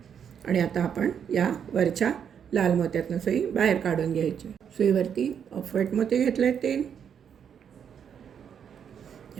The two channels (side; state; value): left; quieter; 8.0 dB